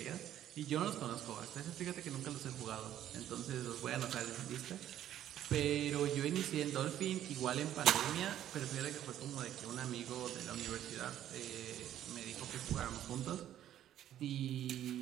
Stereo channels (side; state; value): left; quieter; 11.6 dB